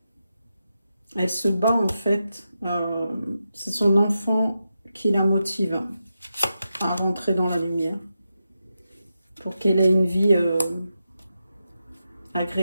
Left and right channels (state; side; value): inverted; both; correlation -0.88